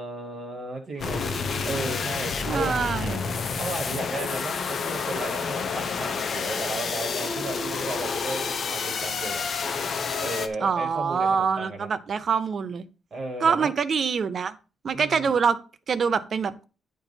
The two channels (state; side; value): normal; both; correlation 0.77